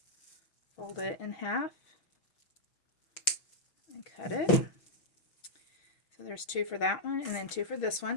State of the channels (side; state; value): right; late; 6.2 ms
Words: Fold it in half and cut it. So there's 2 for that one and then 2 for this